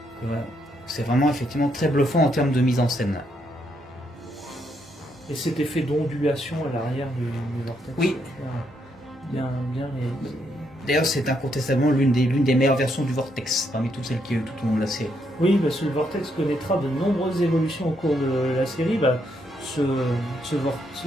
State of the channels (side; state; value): both; normal; correlation 0.76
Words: c'est vraiment effectivement très bluffant en termes de mise en scène. Et cet effet d'ondulation à l'arrière du vortex. Oui. Bien réalisé. D'ailleurs, c'est incontestablement l'une des meilleures versions du vortex, parmi toutes celles qui ont eu tout au long de la série. Oui, parce que le vortex connaîtra de nombreuses évolutions au cours de la série.